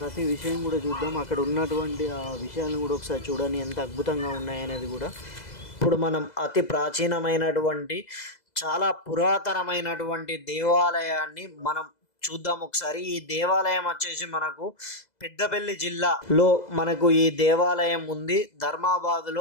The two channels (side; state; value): right; late; 2.0 ms